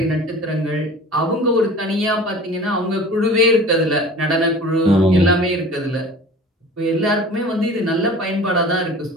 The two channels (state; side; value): normal; both; correlation 0.42